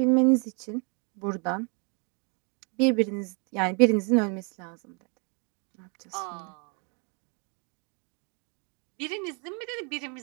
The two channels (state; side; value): quieter; left; 36.2 dB